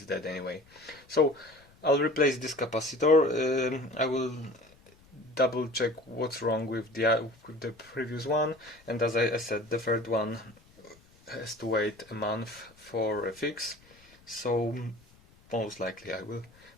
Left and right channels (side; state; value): left; noise; rumble, 28 dB below the sound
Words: dead anyway. So I'll replace this capacitor. I will double check what's wrong with the previous one, and as I said, the third one has to wait a month for a fix, so most likely I will